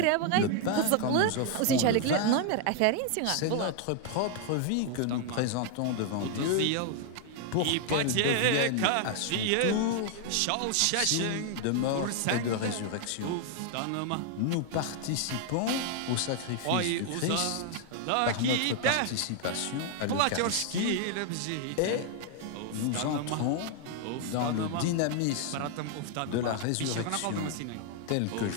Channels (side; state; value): both; different; correlation 0.00